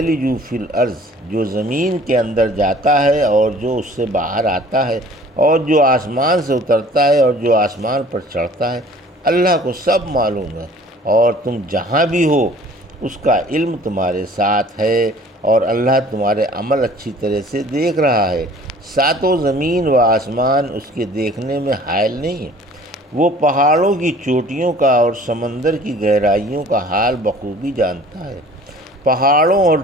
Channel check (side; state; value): both; normal; correlation 0.50